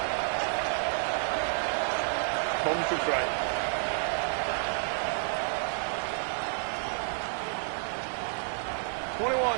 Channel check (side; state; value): left; silent; 56 dB below the other